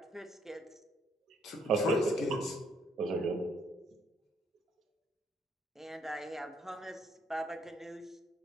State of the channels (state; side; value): normal; both; correlation 0.69